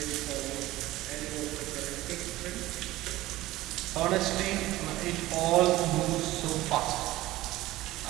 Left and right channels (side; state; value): left; quieter; 17.1 dB